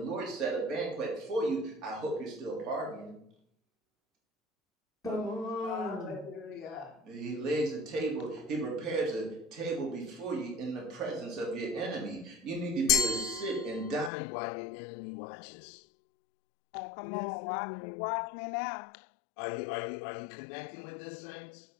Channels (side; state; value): right; drops out; at 14.1 s